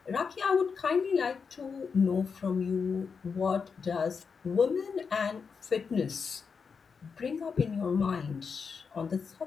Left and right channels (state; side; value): quieter; right; 5.6 dB